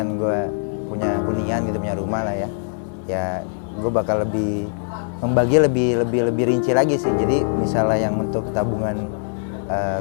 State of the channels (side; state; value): right; silent; 64 dB below the other